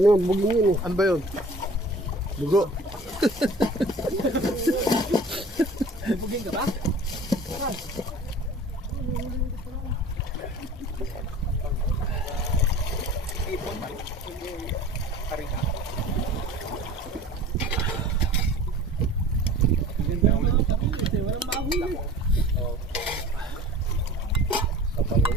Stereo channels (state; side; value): normal; both; correlation 0.43